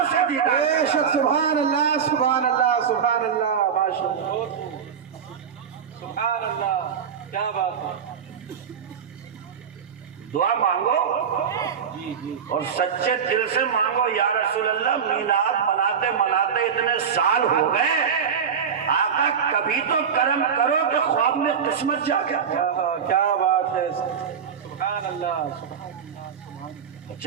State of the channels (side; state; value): left; quieter; 7.2 dB